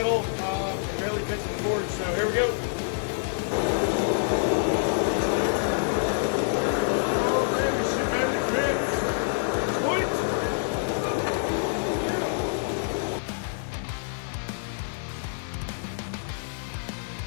It barely fits in the forge, so here we go.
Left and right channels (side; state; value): right; silent; digital silence